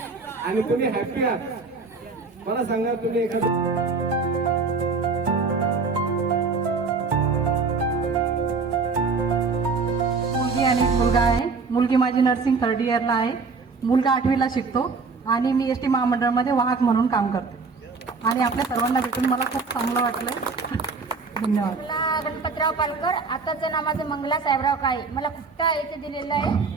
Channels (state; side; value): quieter; left; 4.5 dB